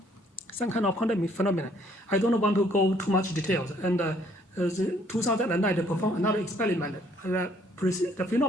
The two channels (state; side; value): normal; both; correlation 0.64